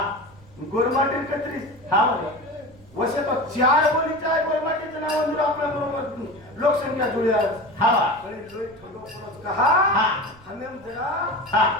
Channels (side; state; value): right; noise; rumble, 25 dB below the sound